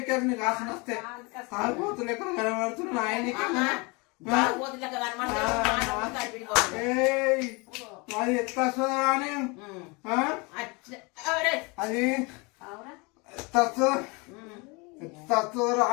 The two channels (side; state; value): right; quieter; 28.3 dB